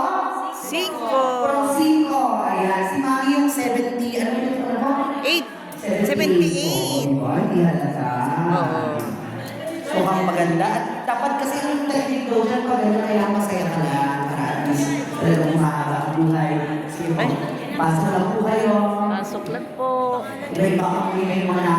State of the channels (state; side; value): identical; both; correlation 1.00